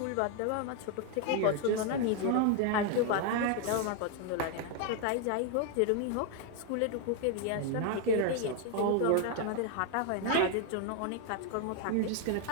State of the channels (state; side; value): different; both; correlation 0.01